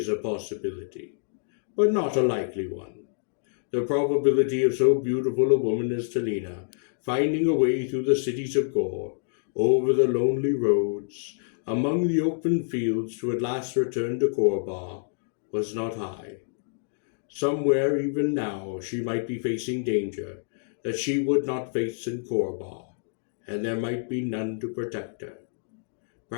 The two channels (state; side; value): silent; right; digital silence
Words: a possibility, but not a likely one. The probability of so beautiful a woman as Talina finding a way through the cities of Gor, over the lonely roads, among the open fields to at last return to Korba, was not high. Somewhere even now she might be facing danger that she would not face in Korba, and there might be none to protect her.